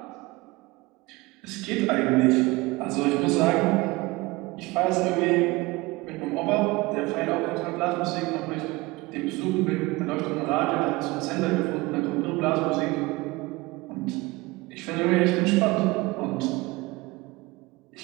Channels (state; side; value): quieter; left; 22.4 dB